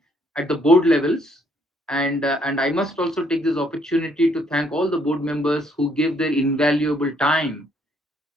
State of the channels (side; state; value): both; normal; correlation 0.68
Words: at the board levels. And I must also take this opportunity to thank all the board members who gave their invaluable time,